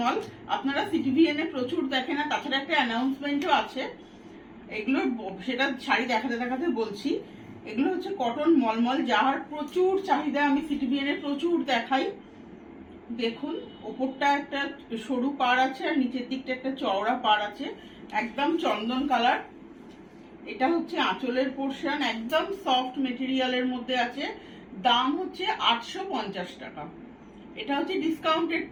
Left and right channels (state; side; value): identical; both; correlation 1.00